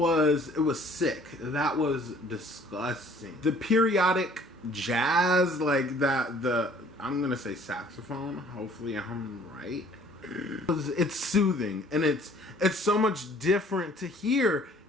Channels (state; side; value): normal; both; correlation 0.55